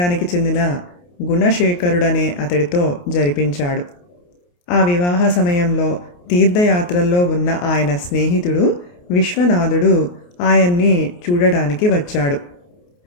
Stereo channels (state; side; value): late; right; 28 ms